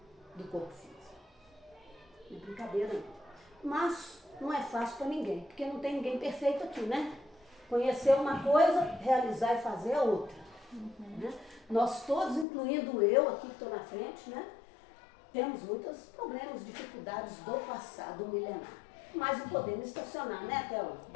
do corpo físico. Não é brincadeira não. Mas não é fácil para ninguém, porque não tem ninguém perfeito aqui, né? Conhecer uma coisa, realizar e fazer a outra. Né? Nós todos, incluindo eu aqui que estou na frente, né? Temos muitos problemas, dificuldades do passado milenar. Mas não podemos estacionar, né, Théo?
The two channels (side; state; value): right; drops out; at 12.5 s